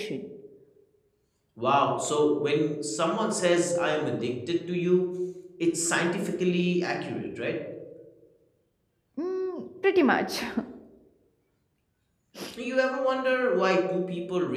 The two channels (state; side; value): identical; both; correlation 1.00